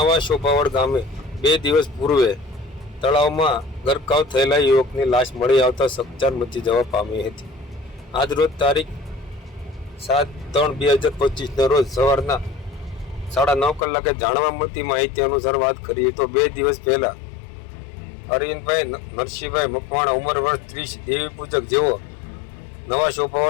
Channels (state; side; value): drops out; right; at 13.9 s